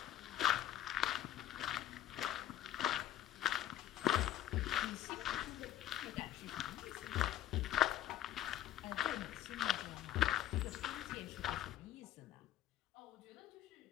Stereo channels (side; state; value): right; quieter; 12.5 dB